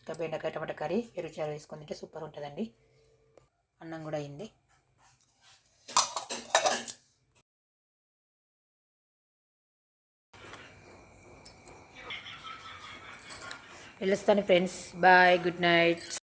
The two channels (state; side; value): identical; both; correlation 1.00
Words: బెండకాయ టమాటా కర్రీ పెరుగు చారు వేసుకొని తింటే సూపర్ ఉంటుందండి. అన్నం కూడా అయింది. వెళ్ళొస్తాను ఫ్రెండ్స్. Bye, good night.